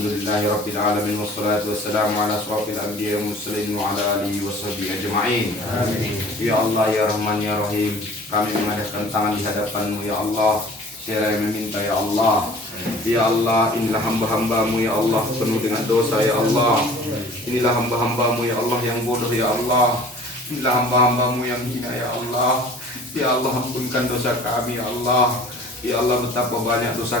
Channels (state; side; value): normal; both; correlation 0.47